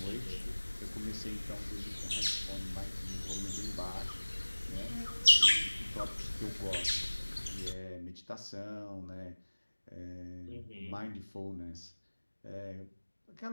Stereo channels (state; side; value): inverted; both; correlation -1.00